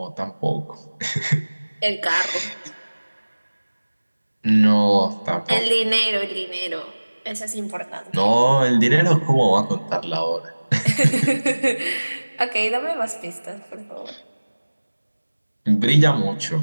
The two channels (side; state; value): both; inverted; correlation -1.00